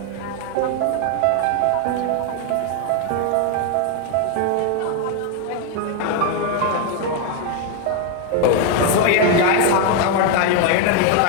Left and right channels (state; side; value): different; both; correlation 0.01